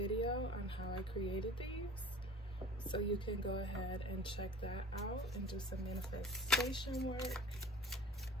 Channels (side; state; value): both; normal; correlation 0.42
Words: on how I created these. So you can go ahead and check that out and do some manifestation work.